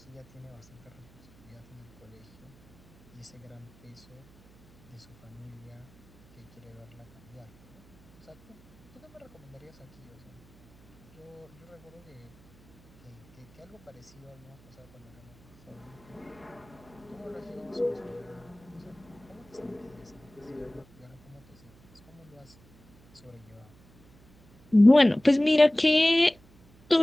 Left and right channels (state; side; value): noise; right; hum, 27 dB below the sound